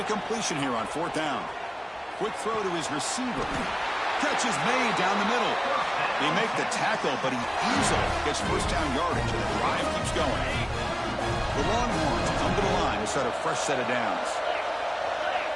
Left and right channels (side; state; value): both; identical; correlation 1.00